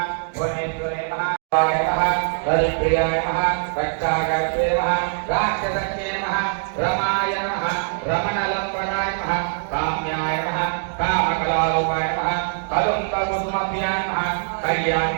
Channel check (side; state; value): left; silent; digital silence